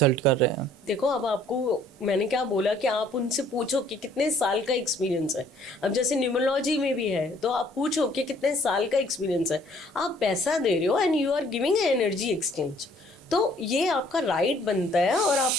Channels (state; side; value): normal; both; correlation 0.60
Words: कर रहे हैं? देखो, अब आपको मैंने क्या बोला कि आप उनसे पूछो कि कितने साल का एक्सपीरियंस है। अब जैसे न्यूमरोलॉजी में भी है, तो आप पूछो कि कितने साल का एक्सपीरियंस है। आप पैसा दे रहे हो and you are giving energy exchange, तो ये आपका राइट बनता है और